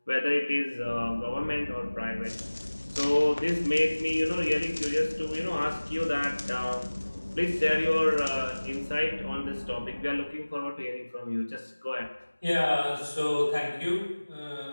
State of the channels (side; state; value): both; inverted; correlation -1.00